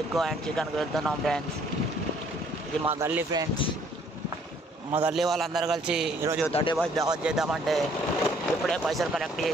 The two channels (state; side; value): normal; both; correlation 0.62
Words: అండ్ చికెన్కి వెళ్తున్నాం ఫ్రెండ్స్. ఇది మా గల్లీ ఫ్రెండ్స్. మా గల్లీ వాళ్ళందరూ కలిసి ఈరోజు 35 దావత్ చేద్దామంటే ఇప్పుడే పైసలు కలెక్ట్